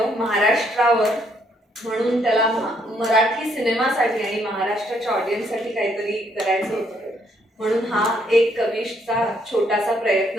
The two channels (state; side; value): normal; both; correlation 0.70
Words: महाराष्ट्रावर. म्हणून त्याला मराठी सिनेमासाठी आणि महाराष्ट्राच्या ऑडियन्ससाठी काहीतरी करायचं होतं, म्हणून हा एक कविशचा छोटासा